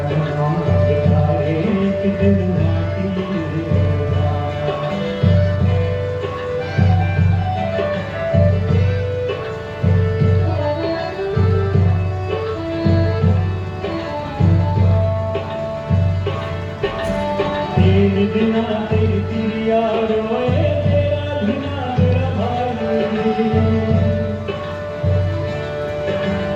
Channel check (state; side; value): identical; both; correlation 1.00